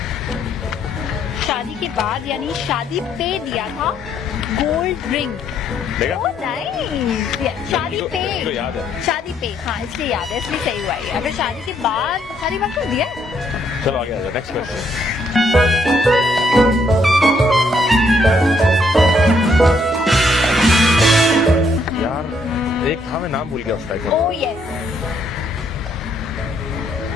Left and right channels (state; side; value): normal; both; correlation 0.71